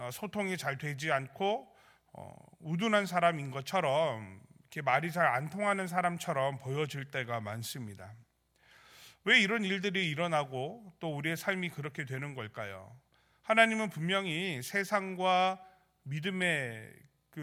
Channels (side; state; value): both; identical; correlation 1.00